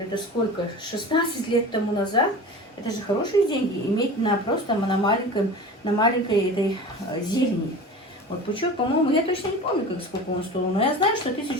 сколько, 16 лет тому назад, это же хорошие деньги, иметь просто на маленьком на маленькой этой зелени. Вот пучок, по-моему, я точно не помню, сколько он стоил, но я знаю, что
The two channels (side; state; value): both; normal; correlation 0.34